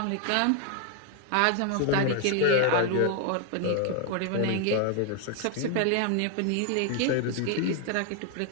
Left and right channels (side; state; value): both; different; correlation 0.01